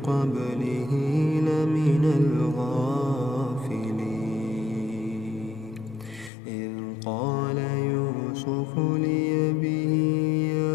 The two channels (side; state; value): right; drops out; at 6.3 s